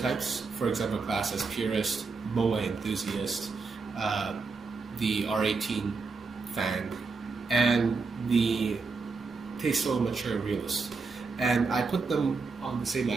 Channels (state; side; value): quieter; left; 4.4 dB